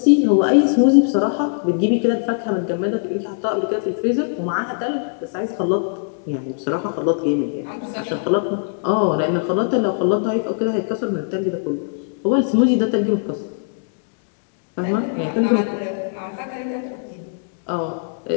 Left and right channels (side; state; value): right; silent; digital silence